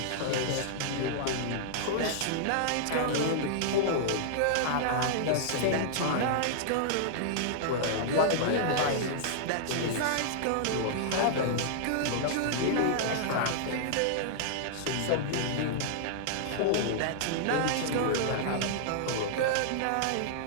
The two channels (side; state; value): both; different; correlation -0.01